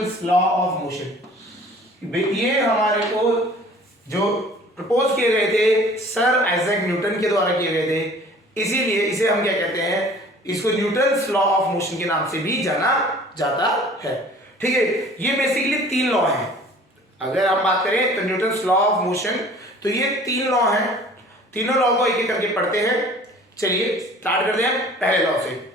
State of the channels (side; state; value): both; normal; correlation 0.49